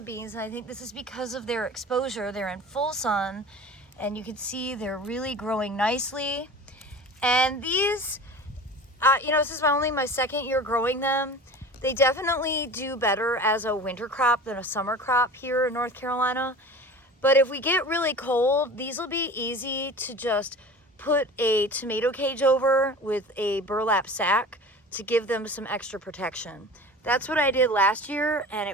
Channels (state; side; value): normal; both; correlation 0.37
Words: and I think this is because of their exposure. They're in full sun, and you can see they're really growing nicely. And these, you know, this is only my second year growing them. They definitely do better as a winter crop than a summer crop here in North Carolina. But if we get really cold, these will be easy to just put a tomato cage over with a burlap sack to give them some extra protection. That's what I did last year, and